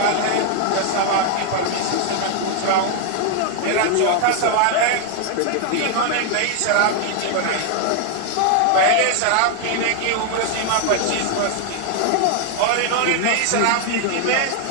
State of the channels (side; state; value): both; different; correlation 0.00